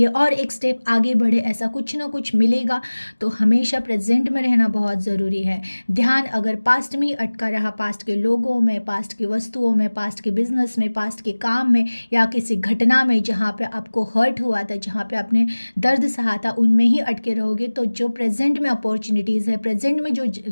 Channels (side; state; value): both; inverted; correlation -1.00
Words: और एक स्टेप आगे बढ़े, ऐसा कुछ ना कुछ मिलेगा। तो हमेशा प्रेजेंट में रहना बहुत ज़रूरी है। ध्यान अगर पास्ट में ही अटका रहा, पास्ट के लोगों में, पास्ट की वस्तुओं में, पास्ट के बिजनेस में, पास्ट के काम में, या किसी घटना में जहाँ पे आपको हर्ट हुआ था, जहाँ पे आपने दर्द सहा था, उनमें ही अटके रहोगे तो जो प्रेजेंट में अपॉर्चुनिटीज़ है, प्रेजेंट में जो